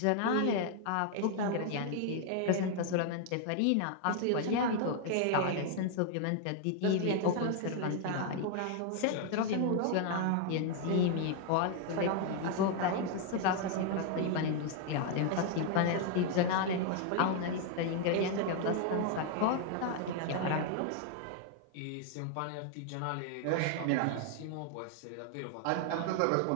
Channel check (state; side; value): different; both; correlation 0.00